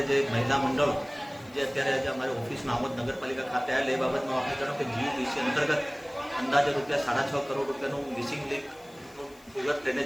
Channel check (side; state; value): left; noise; hiss, 27 dB below the sound